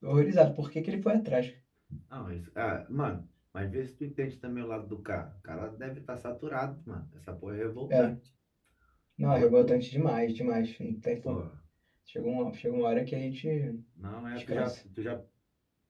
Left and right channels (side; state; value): both; identical; correlation 1.00